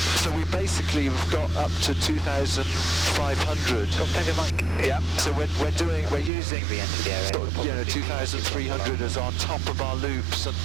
So we basically have got up to 2,500. Yeah. So we're using sort of, 2,300 as our top of our loops and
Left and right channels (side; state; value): left; drops out; at 6.3 s